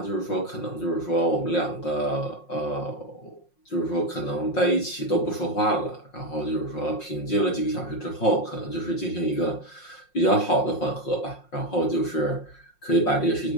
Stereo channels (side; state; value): right; late; 5.6 ms